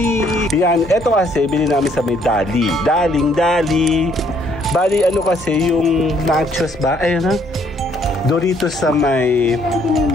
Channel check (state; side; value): normal; both; correlation 0.66